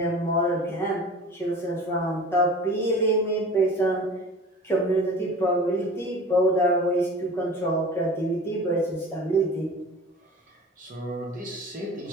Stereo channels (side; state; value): both; normal; correlation 0.40